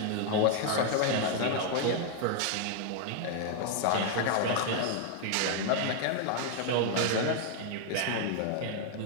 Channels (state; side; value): different; both; correlation 0.00